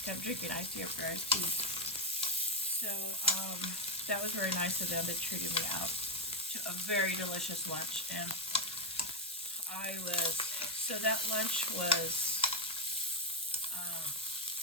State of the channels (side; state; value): both; normal; correlation 0.05